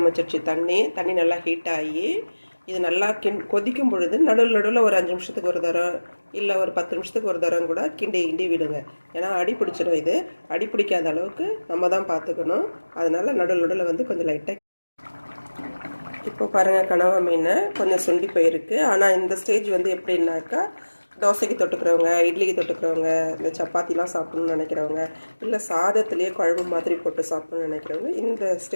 தண்ணி நல்லா ஹீட் ஆகி இது நல்லா கொதிக்கும் பொழுது நடுவில் ஒரு 5 நிமிஷத்துக்கு ஒரு தரம் இல்லை ஒரு 10 நிமிஷத்துக்கு ஒரு தரம் கூட கிண்டி விடுங்க. ஏன்னா அடி பிடிச்சிடும். இது அடி பிடிக்காத அளவுக்கு நம்ம தான் பார்த்துக்கணும். அதனால் நடுவில் கொஞ்சம் லைட்டாக. இப்போ பாருங்கள், கனவா மீன் கொஞ்சம் சுண்டி போயிருக்கு. ஆனால் இந்த ஸ்டேஜ் எப்படின்னாக்கா, தோசைக்கு தொட்டுக்கிறவங்க, இட்லிக்கு தொட்டுக்கிறவங்க, இந்த சப்பாத்திலாம் சாப்பிட்ணுன்னு நினைக்கிறவங்க, இல்லை சாதத்துலேயே குழம்பு மாதிரி போட்டு சாப்பிட்ணுன்னு நினைக்கிறவங்க, இந்த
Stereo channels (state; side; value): inverted; both; correlation -1.00